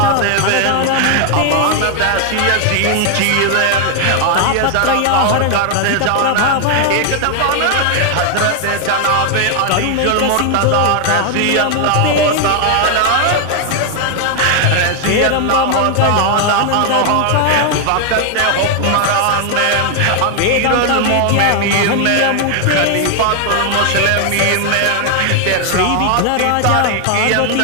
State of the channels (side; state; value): both; different; correlation 0.00